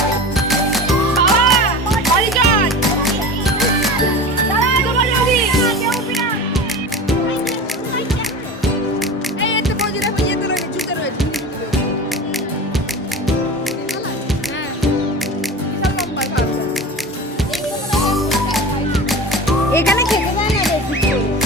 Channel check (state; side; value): normal; both; correlation 0.32